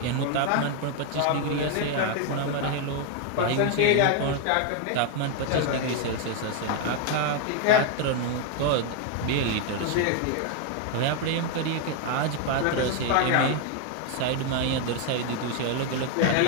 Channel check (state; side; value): different; both; correlation 0.01